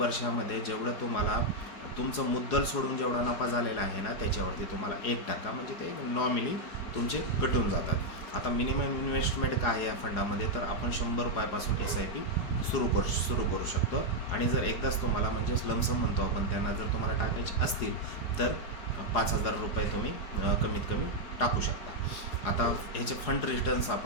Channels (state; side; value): late; right; 4.8 ms